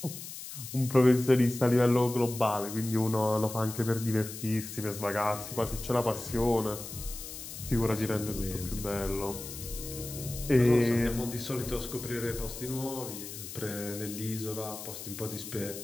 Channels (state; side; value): noise; left; hiss, 10 dB below the sound